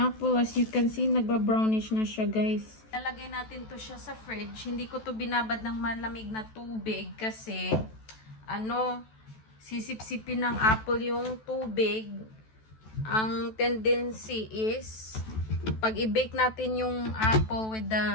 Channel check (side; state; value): right; late; 14 ms